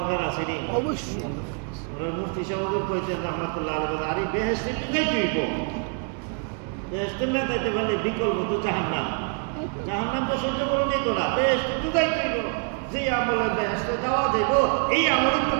আছে নি? অবশ্যই। মুফতি সাহেব কইতেন রাহমাতুল্লাহ আলাইহি, আরে বেহেশতে যাইতে হইব, বেহেশতে না যাইতে পারলে বিকল্প তো জাহান্নাম। জাহান্নাম তো সহ্য করে নিত না, বেহেশতে তো যাইতে হইব। যে আমলে বেহেশতে যাওয়া যাইব, এই আমলে তো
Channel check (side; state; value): left; quieter; 38.8 dB